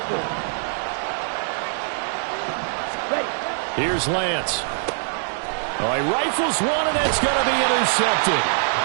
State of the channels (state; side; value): silent; left; digital silence